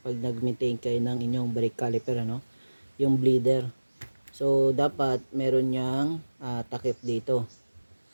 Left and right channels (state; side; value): inverted; both; correlation -1.00